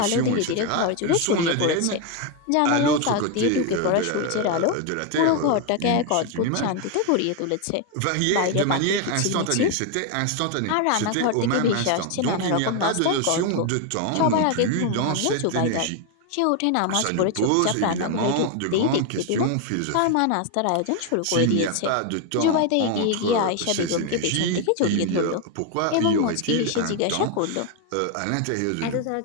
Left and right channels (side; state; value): both; different; correlation 0.01